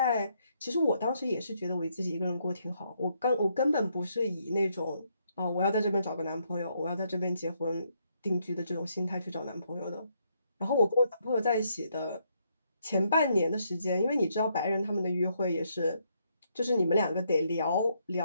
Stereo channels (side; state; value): both; inverted; correlation -0.74